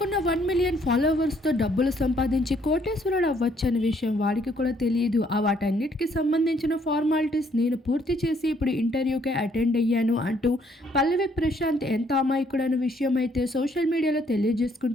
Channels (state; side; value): normal; both; correlation 0.67